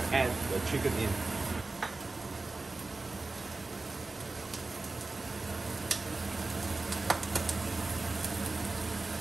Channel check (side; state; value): left; quieter; 3.4 dB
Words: add the chicken in.